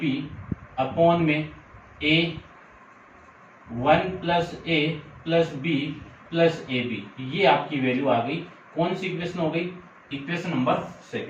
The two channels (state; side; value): identical; both; correlation 1.00